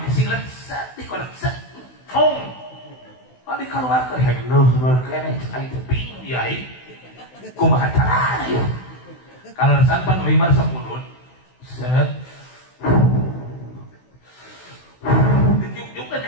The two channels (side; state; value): right; late; 16 ms